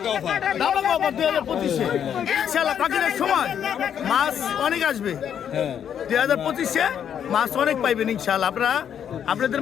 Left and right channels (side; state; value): right; quieter; 8.8 dB